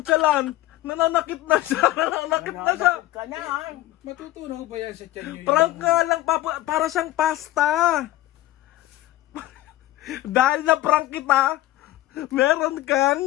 Nananakit na siya. Nananakit na siya. Ka na, ha? Matutunaw ba yan sa tiyan nyo? Prank nga lang, Papu. Para siyang pasta. Dahil na prank kita, meron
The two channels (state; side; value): quieter; right; 15.7 dB